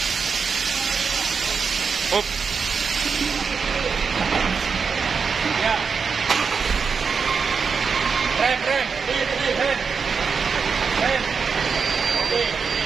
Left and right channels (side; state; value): left; quieter; 5.6 dB